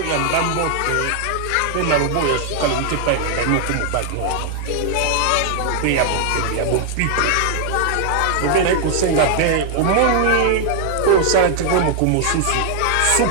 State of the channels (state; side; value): different; both; correlation 0.00